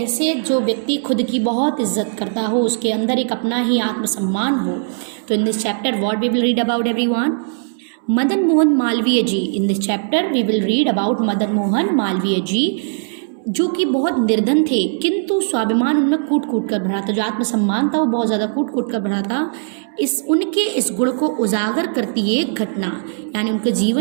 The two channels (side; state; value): left; silent; 67 dB below the other